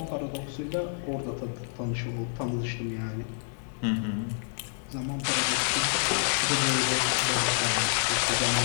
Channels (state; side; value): silent; right; digital silence